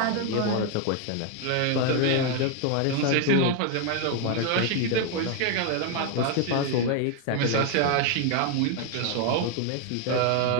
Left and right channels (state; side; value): different; both; correlation 0.01